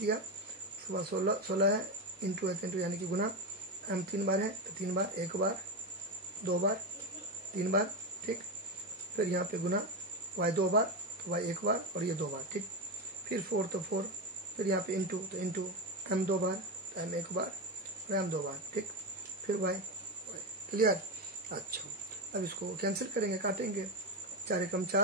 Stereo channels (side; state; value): both; normal; correlation 0.14